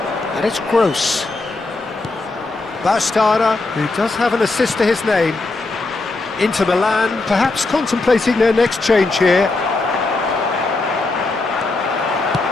And it's Gross. Bastarda, who does have an assist to his name. Inter Milan, perhaps contemplating their next change here.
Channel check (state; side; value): quieter; right; 3.3 dB